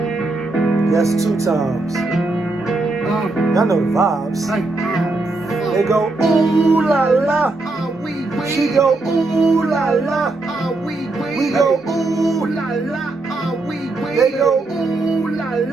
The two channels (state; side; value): quieter; left; 3.1 dB